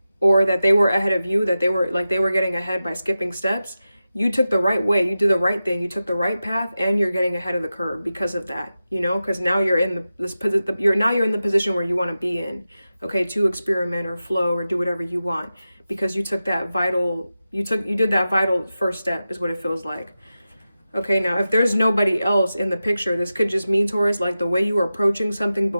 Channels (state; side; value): inverted; both; correlation -0.93